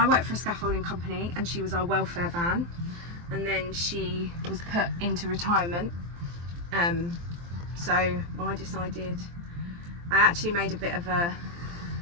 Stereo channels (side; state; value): left; late; 23 ms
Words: worked for a scaffolding company and she was our welfare van, and then she was put into retirement. So I decided, I actually made a bit of a,